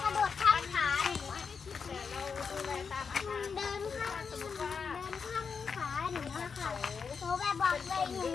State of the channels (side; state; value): right; quieter; 5.7 dB